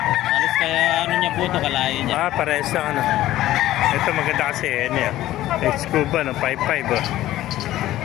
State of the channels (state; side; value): quieter; right; 14.6 dB